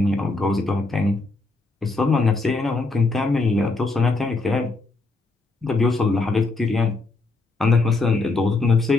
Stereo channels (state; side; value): quieter; right; 3.4 dB